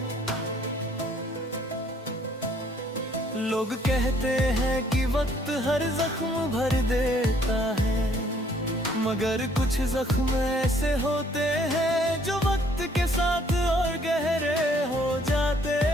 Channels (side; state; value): both; normal; correlation 0.63